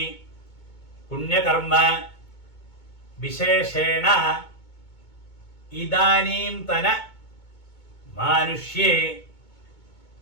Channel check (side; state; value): right; late; 2.2 ms